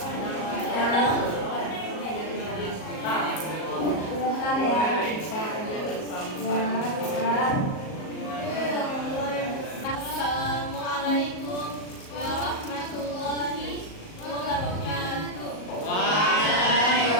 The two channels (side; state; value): right; late; 38 ms